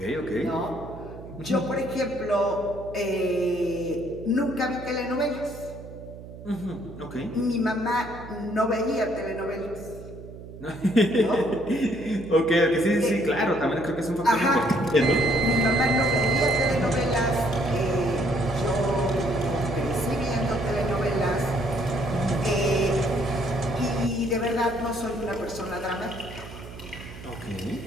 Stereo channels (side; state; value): right; noise; hum, 14 dB below the sound